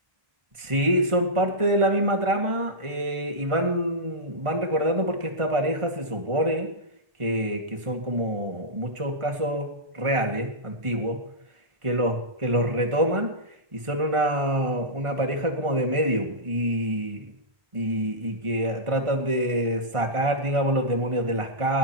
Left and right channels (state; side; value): late; left; 1.5 ms